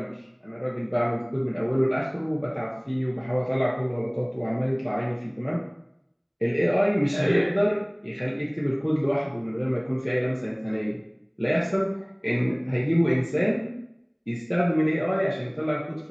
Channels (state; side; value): identical; both; correlation 1.00